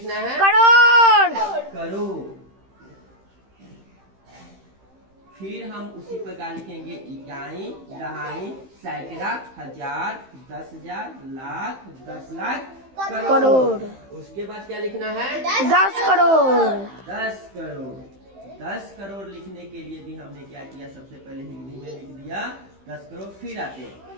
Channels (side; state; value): left; late; 15 ms